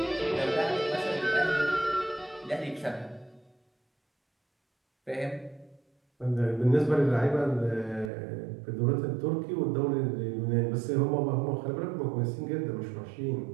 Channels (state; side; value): drops out; left; at 8.1 s